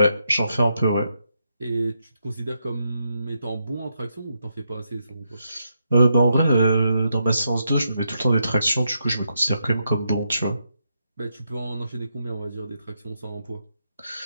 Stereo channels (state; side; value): inverted; both; correlation -0.81